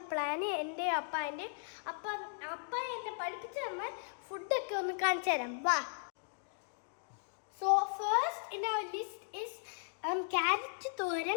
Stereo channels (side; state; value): right; silent; digital silence